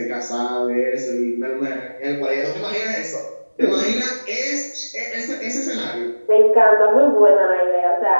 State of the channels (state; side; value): inverted; both; correlation -1.00